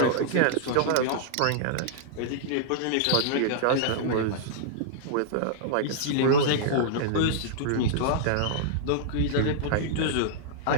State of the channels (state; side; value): different; both; correlation -0.01